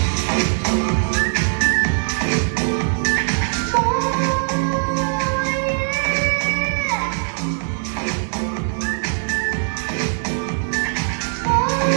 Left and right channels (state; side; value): silent; left; 65 dB below the other